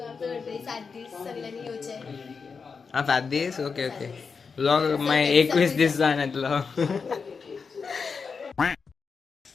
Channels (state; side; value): quieter; right; 5.3 dB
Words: हा 7 दिवस ओके ओके लॉग माय 21 दिवस जाण्यातलो